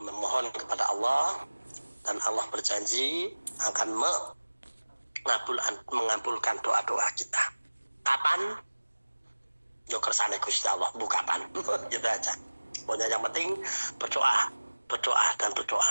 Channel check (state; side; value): inverted; both; correlation -1.00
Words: kepada Allah dan Allah berjanji akan mengabulkan doa-doa kita. Kapan? Yo kersane Gusti Allah, bu kapan? Gitu aja. Pokoknya yang penting berdoa dan